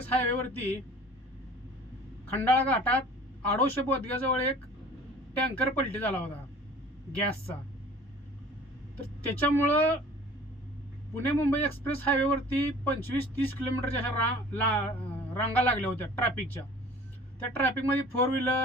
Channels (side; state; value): both; normal; correlation 0.47